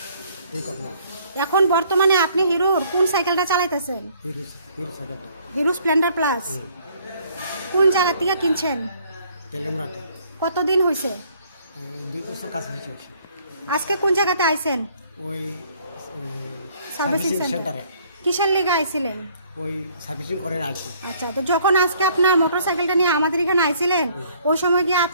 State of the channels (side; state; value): both; inverted; correlation -0.61